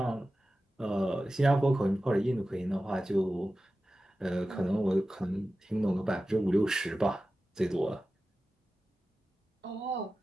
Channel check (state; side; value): normal; both; correlation 0.94